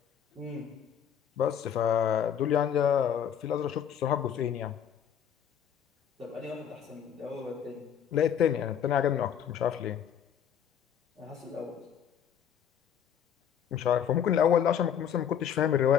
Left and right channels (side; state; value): right; quieter; 8.8 dB